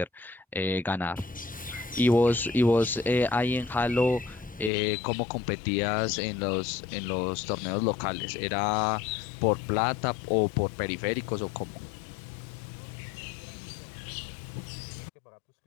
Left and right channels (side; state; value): right; drops out; at 4.7 s